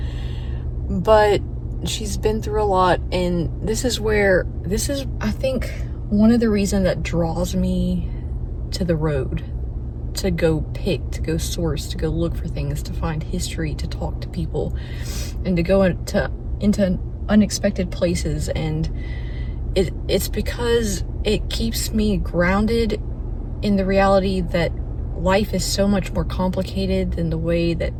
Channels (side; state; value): both; identical; correlation 1.00